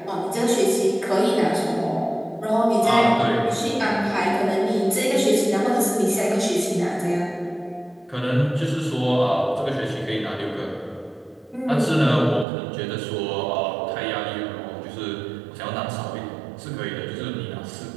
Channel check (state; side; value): drops out; left; at 12.5 s